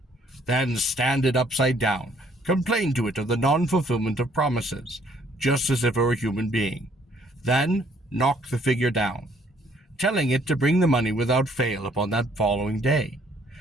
Then stand it upside down. Complain to it of the non-fulfillment of promises, just as if it were a human being. Then knock the figure down, telling it to bring the money without fail upon that following day.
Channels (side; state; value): both; normal; correlation 0.63